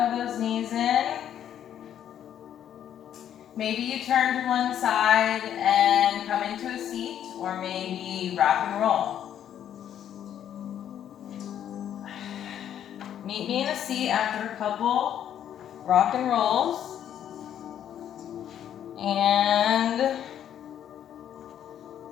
those knees in. Maybe you turn to one side and come into a seat, or maybe rock and roll. Meet me in a seat after a couple rock and rolls. And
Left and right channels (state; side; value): quieter; right; 10.0 dB